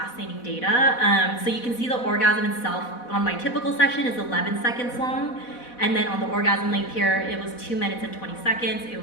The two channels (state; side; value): late; right; 4.1 ms